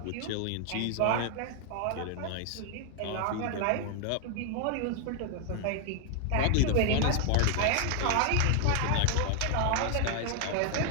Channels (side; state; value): both; different; correlation 0.00